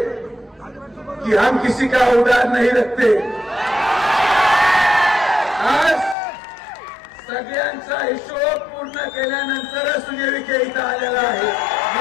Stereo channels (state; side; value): drops out; right; at 6.2 s